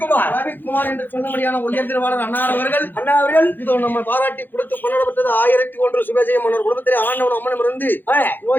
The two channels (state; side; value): late; right; 0.090 ms